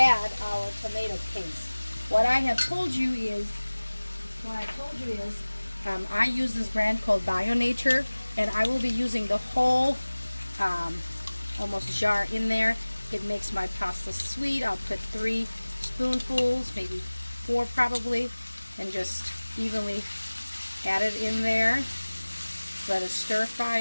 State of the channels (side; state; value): both; inverted; correlation -1.00